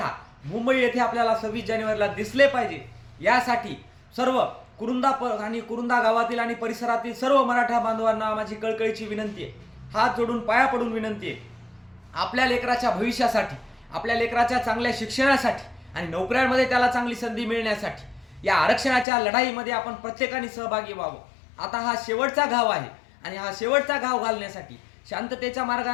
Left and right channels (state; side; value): drops out; right; at 19.1 s